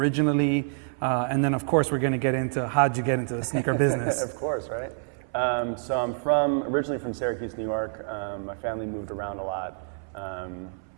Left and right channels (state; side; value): silent; left; 60 dB below the other